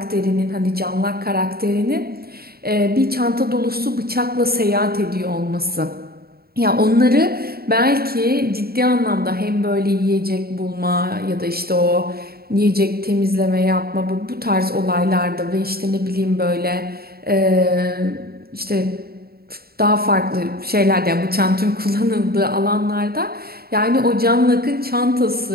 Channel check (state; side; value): late; left; 0.45 ms